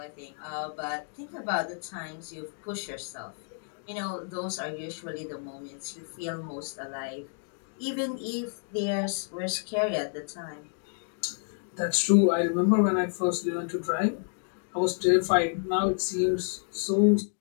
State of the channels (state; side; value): silent; right; 58 dB below the other